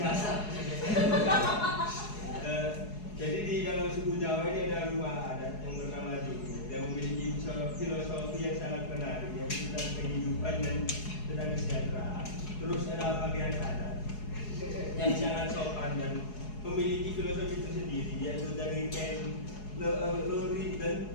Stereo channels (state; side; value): late; right; 4.7 ms